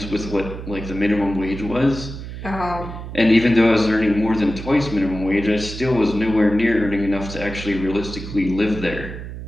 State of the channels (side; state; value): right; noise; hum, 9 dB below the sound